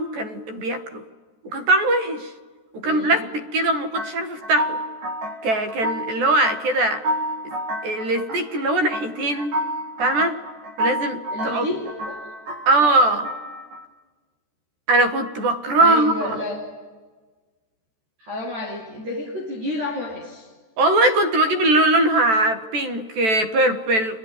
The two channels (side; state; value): left; late; 14 ms